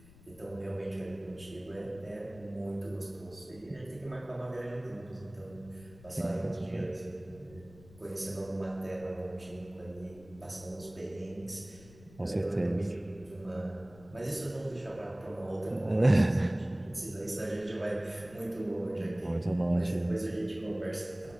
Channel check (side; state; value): left; noise; rumble, 21 dB below the sound